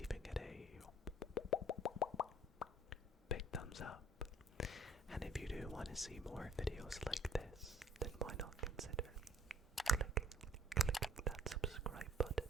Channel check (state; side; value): normal; both; correlation 0.54